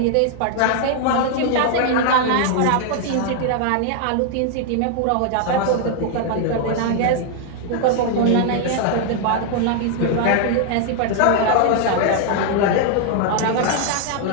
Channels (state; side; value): different; both; correlation 0.00